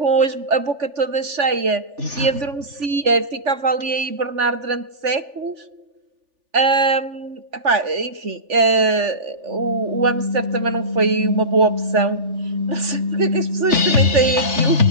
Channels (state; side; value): late; left; 3.5 ms